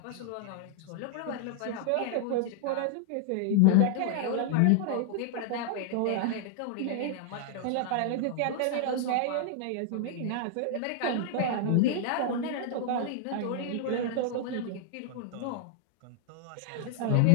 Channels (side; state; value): both; different; correlation -0.01